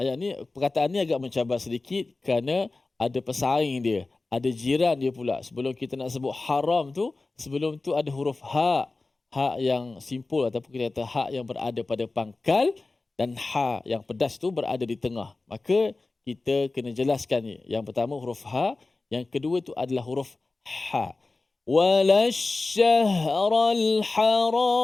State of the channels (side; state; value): right; quieter; 3.4 dB